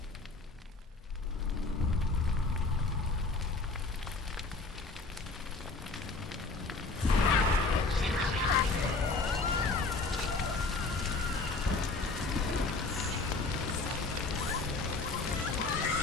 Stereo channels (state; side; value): quieter; right; 3.7 dB